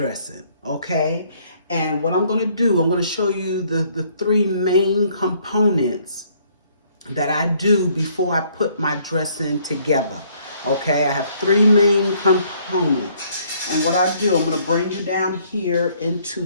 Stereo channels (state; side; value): inverted; both; correlation -0.65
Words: okay? And what I'm going to do, I'm going to show you the three main components that I do before I put my dressing together, okay? I have three main components. And what I do, I'm going to bring you down here into